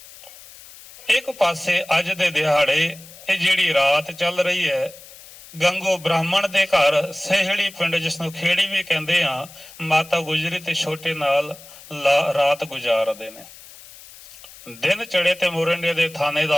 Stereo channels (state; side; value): noise; left; hiss, 19 dB below the sound